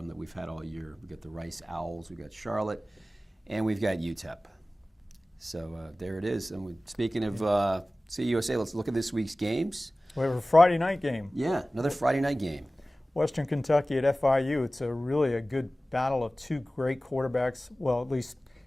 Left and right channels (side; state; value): both; normal; correlation 0.97